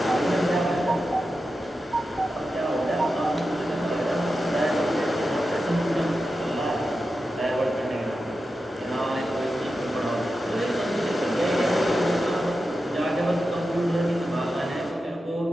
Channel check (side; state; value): both; normal; correlation 0.91